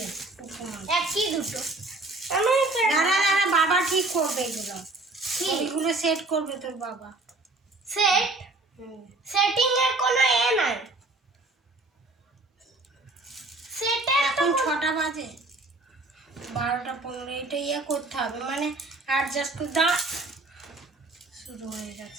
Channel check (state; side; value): quieter; left; 3.0 dB